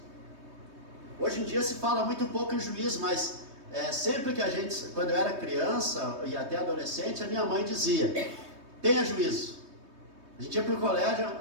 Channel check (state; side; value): late; left; 3.2 ms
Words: Hoje em dia se fala muito pouco em juízo, mas sempre que quando eu era criança e até adolescente, a minha mãe dizia: tenha juízo. A gente ia para o colégio,